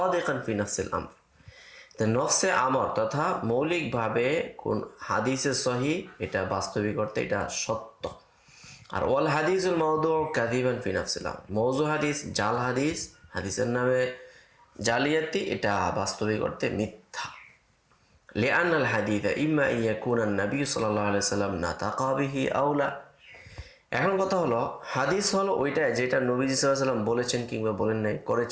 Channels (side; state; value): both; identical; correlation 1.00